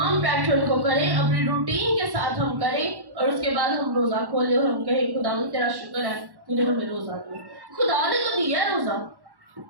पैटर्न को करें, अपनी रूटीन के साथ हम करें, और उसके बाद हम रोजा खोलें और हम कहें खुदा तेरा शुक्र है तूने हमें रोजा दिया। खुदा ने तो दिया है रोजा,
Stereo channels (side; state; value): left; late; 1.1 ms